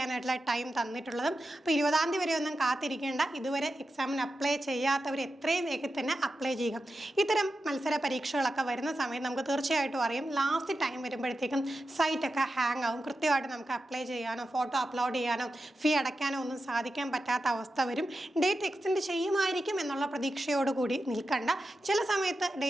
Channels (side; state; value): both; normal; correlation 0.90